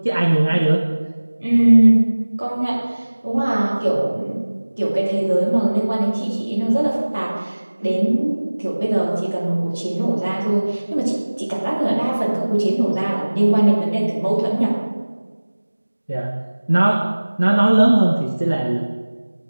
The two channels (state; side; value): inverted; both; correlation -1.00